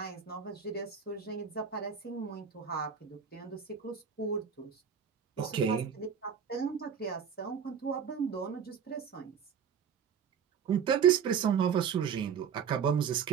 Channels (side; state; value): left; quieter; 7.3 dB